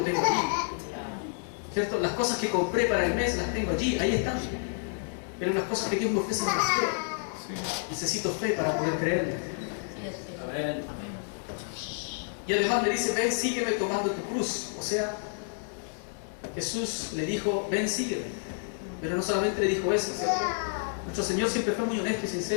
tengo ahí, ¿cierto? Las cosas que compré para el mes las tengo allí, ahí están. Pero las cosas que Dios me ofrece no las creo. Necesito fe para poder creerle. Y además le dice: ven, sígueme tomando tu cruz. O sea, Jesús le dijo: ven, sígueme. Pero no solamente le dijo eso, ¿cierto? Nuestro Señor siempre fue muy honesto y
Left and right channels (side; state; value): right; silent; 58 dB below the other